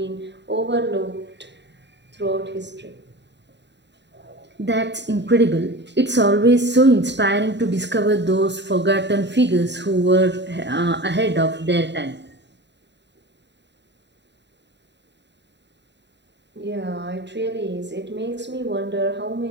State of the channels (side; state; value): left; late; 0.51 ms